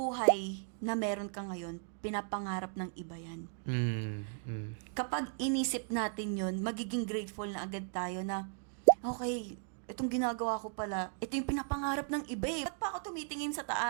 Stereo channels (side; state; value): left; silent; 54 dB below the other